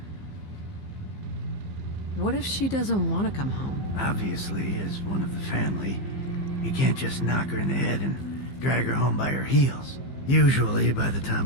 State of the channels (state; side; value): late; right; 15 ms